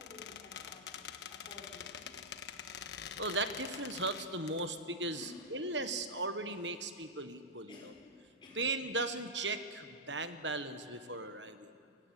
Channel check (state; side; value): normal; both; correlation -0.08